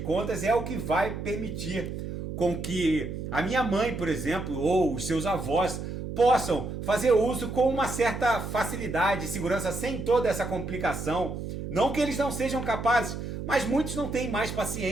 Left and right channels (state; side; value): noise; right; hum, 6 dB below the sound